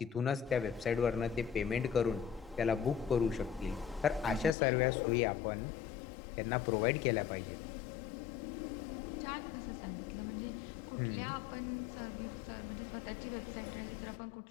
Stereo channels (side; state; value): right; drops out; at 4.5 s